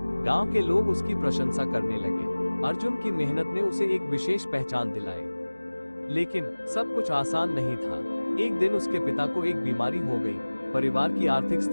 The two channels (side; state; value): both; inverted; correlation -1.00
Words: गांव के लोग उसकी प्रशंसा करने लगे। अर्जुन की मेहनत ने उसे एक विशेष पहचान दिलाई। लेकिन सब कुछ आसान नहीं था। एक दिन उसके पिता को एक बीमारी हो गई। परिवार की आर्थिक